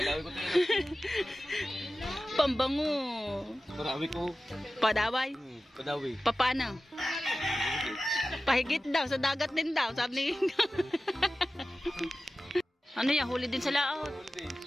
ko to. Pambango. Padawi ko. Padaway? Padawi. Paano? Pahigit daw, sa dagat din daw, sabi ni Ano yan, huli din sa laot?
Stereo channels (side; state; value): both; normal; correlation 0.95